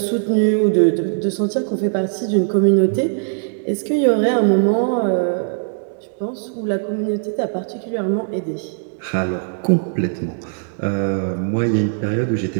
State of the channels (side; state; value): left; silent; 65 dB below the other